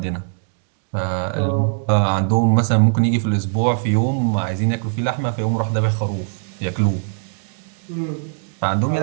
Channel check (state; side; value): silent; left; digital silence